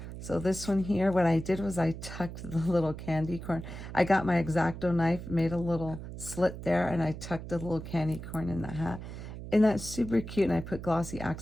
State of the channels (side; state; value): right; noise; hum, 10 dB below the sound